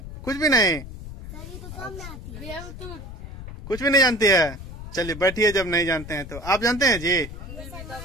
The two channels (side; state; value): left; noise; rumble, 11 dB below the sound